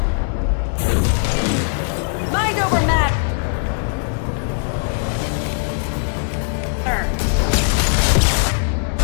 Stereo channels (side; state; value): right; silent; 66 dB below the other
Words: Mind over matter!